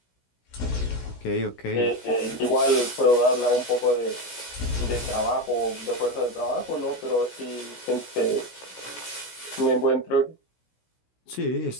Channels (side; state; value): right; late; 16 ms